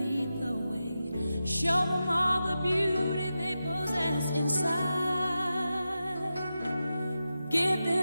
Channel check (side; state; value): both; inverted; correlation -0.91